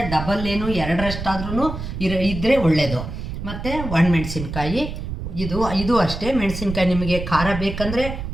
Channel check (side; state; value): right; noise; rumble, 7 dB below the sound